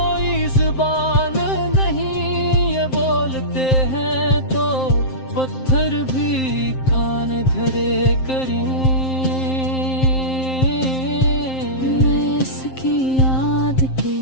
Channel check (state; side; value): late; right; 7.6 ms